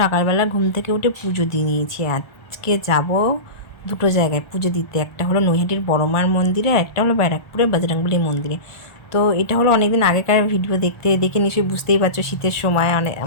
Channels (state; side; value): late; right; 1.4 ms